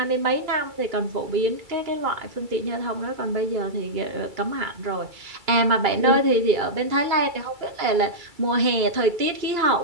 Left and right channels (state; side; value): late; left; 2.3 ms